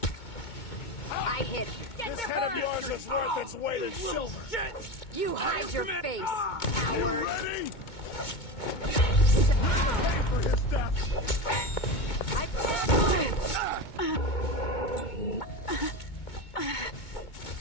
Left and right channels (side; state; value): right; late; 2.2 ms